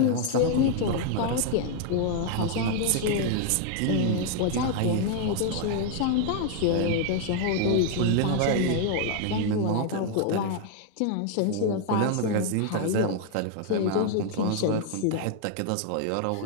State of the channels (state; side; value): different; both; correlation 0.00